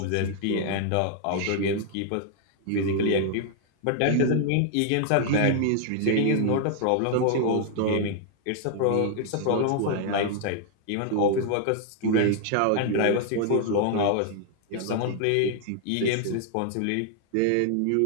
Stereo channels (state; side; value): different; both; correlation 0.00